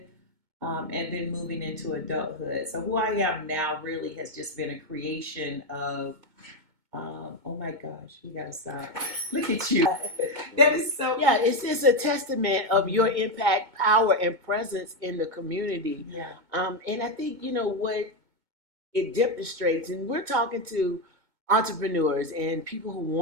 and then moving into adulthood. So who I am now really has just been a creation of, oh my gosh, we gotta stop. Look at you. That is so. Yeah, it's just a testament of your impact, power, and presence in the community. Yeah. And I think, what it demonstrates, and we're talking to entrepreneurs and people who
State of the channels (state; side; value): late; left; 2.2 ms